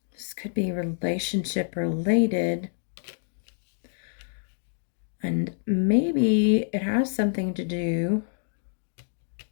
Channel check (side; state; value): right; silent; digital silence